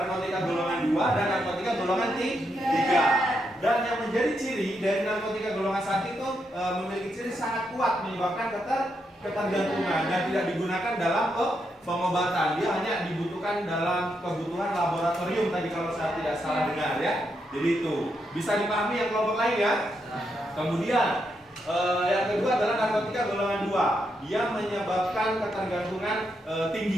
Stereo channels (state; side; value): normal; both; correlation 0.81